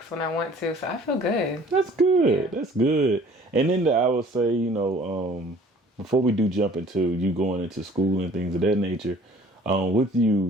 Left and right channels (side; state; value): both; normal; correlation 0.52